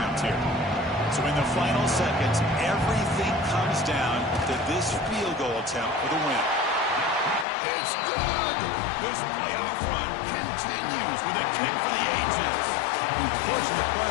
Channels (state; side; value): drops out; right; at 7.5 s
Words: here. So in the final seconds, everything comes down to this field goal attempt for the win. It's good! This playoff run continues with a kick for the ages. The push in the